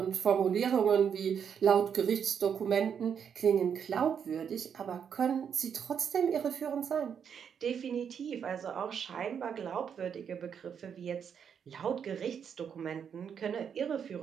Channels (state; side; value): quieter; left; 7.6 dB